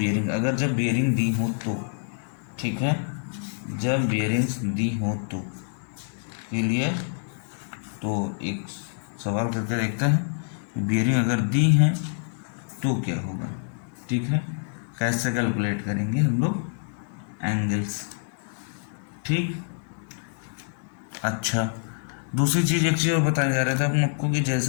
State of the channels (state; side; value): silent; right; digital silence